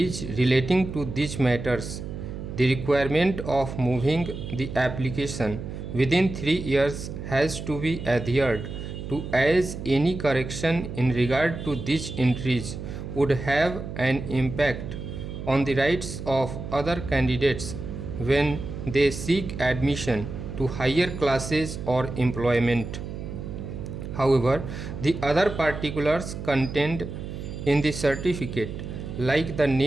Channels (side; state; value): right; noise; hum, 8 dB below the sound